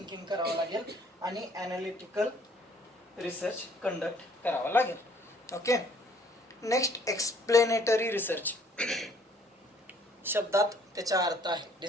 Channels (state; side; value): normal; both; correlation 0.60